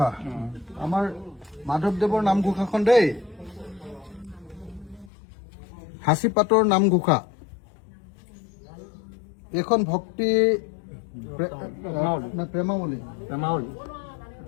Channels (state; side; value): drops out; right; at 5.1 s